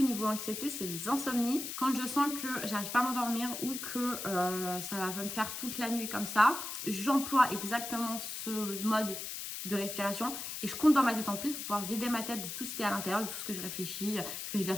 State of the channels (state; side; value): noise; left; hiss, 6 dB below the sound